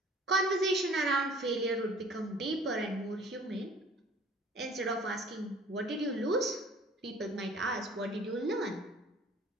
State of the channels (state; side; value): normal; both; correlation 0.50